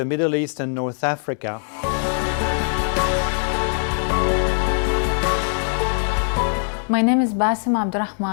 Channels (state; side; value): silent; right; 65 dB below the other